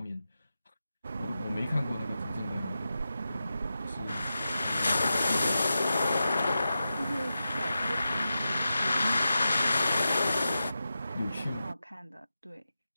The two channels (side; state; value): both; inverted; correlation -0.91